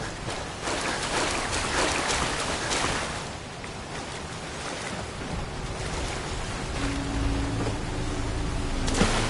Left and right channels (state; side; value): identical; both; correlation 1.00